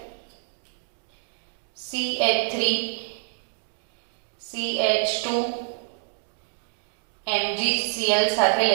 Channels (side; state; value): left; silent; digital silence